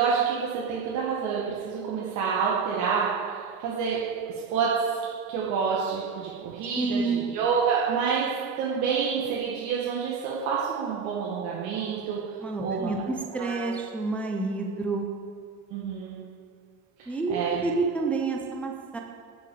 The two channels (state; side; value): quieter; left; 5.3 dB